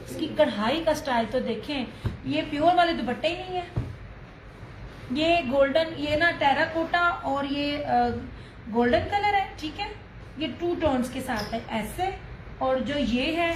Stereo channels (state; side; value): identical; both; correlation 1.00